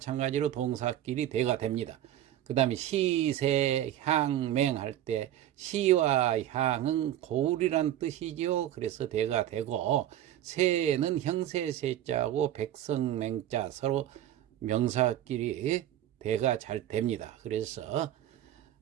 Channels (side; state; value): left; quieter; 12.2 dB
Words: 동사끼리 대가 됩니다. 그 다음에 시세 향맹 할 때 시와 향은 고울이란 뜻이죠. 그래서 대가 되고 세는 형세세자고 백성맹자 서로 명사끼리 대가 잘 됩니다. 그래서